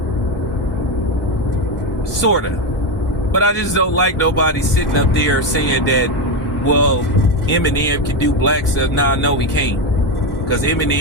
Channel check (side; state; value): both; normal; correlation 0.11